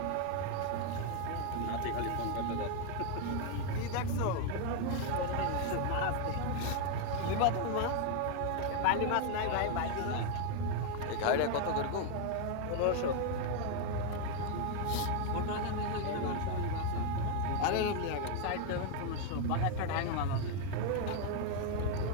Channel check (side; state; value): both; different; correlation 0.00